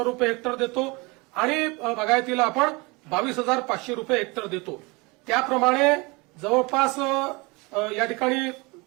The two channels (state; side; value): quieter; left; 26.4 dB